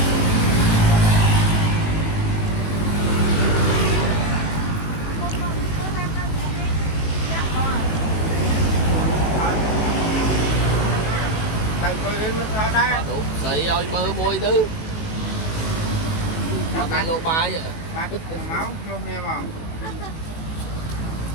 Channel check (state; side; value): late; right; 18 ms